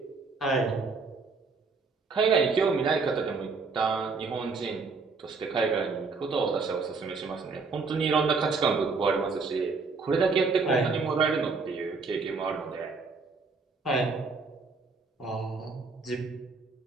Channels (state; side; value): quieter; left; 4.4 dB